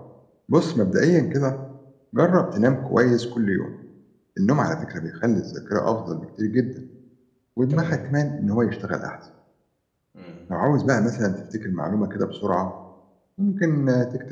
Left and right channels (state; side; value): identical; both; correlation 1.00